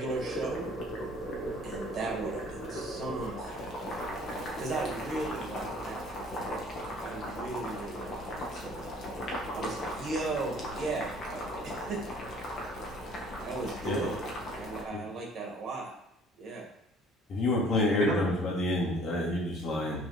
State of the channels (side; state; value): both; normal; correlation 0.54